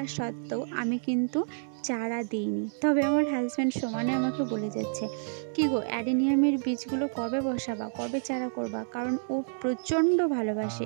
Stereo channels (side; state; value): left; silent; 59 dB below the other